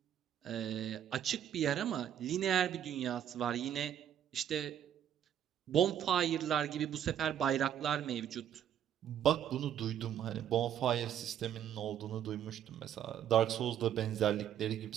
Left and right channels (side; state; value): left; quieter; 10.0 dB